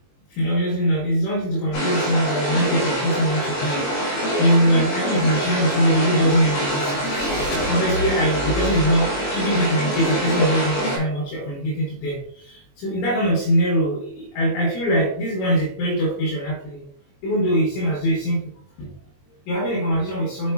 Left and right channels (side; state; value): right; late; 21 ms